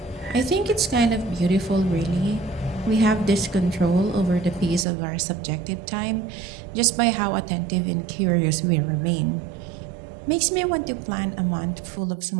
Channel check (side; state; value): left; drops out; at 4.9 s